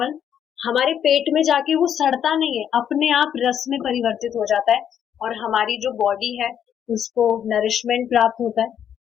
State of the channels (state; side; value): quieter; right; 9.1 dB